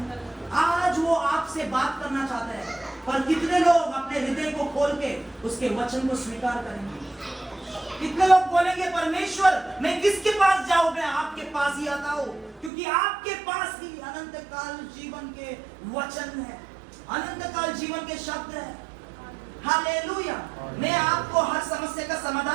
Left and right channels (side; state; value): left; drops out; at 12.7 s